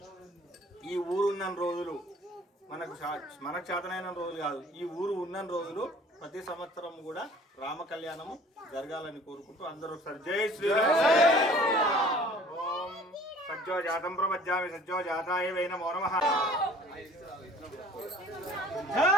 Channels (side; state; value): both; normal; correlation 0.51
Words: ఈ ఊరు ఉన్న రోజులు మనకు చేతనైన రోజులు కాదు, ఈ ఊరు ఉన్న రోజులు ప్రతి సంవత్సరం కూడా రామ కళ్యాణము జరగాలని కోరుకుంటూ అందరూ ఒకసారి జై శ్రీరామ్. ఓం సజ్జో జాతం ప్రపద్యామి సజ్జో జాతాయ వై నమో నమః. జై